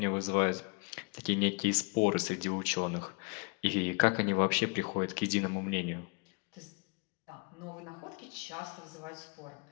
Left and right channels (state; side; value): quieter; right; 32.9 dB